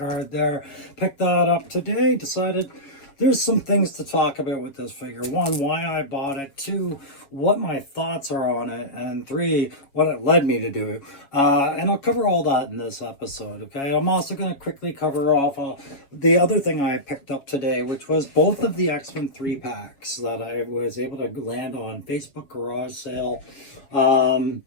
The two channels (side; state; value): right; late; 7.2 ms